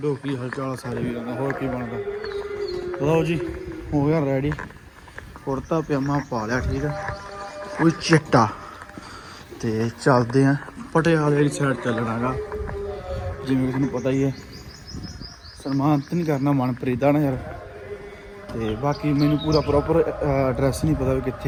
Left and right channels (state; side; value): identical; both; correlation 1.00